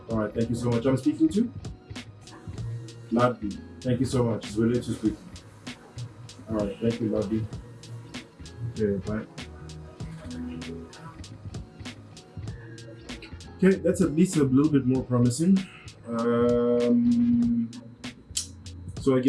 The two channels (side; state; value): both; identical; correlation 1.00